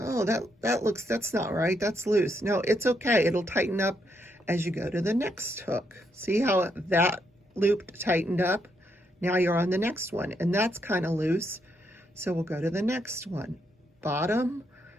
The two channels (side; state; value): both; normal; correlation 0.77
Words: that's not right. That's loose. No, it's okay. It'll tighten up as you go to the next hook. See how that loop tightened up? Now you're on the next one, and that's kind of loose. So we'll go to the next one. Bottom,